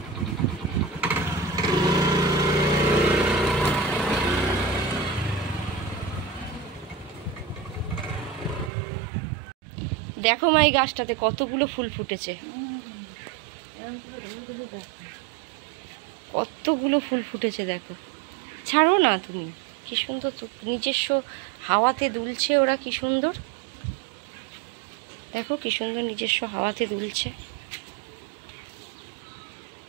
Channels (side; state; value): left; drops out; at 8.7 s